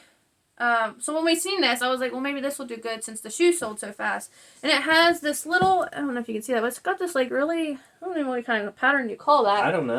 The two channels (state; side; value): identical; both; correlation 1.00